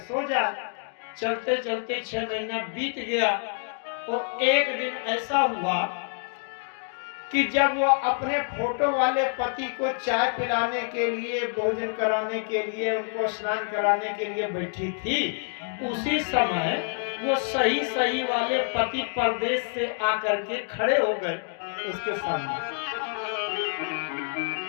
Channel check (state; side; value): silent; right; 60 dB below the other